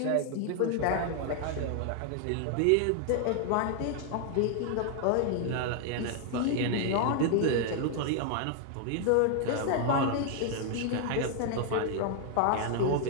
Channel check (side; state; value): both; different; correlation 0.00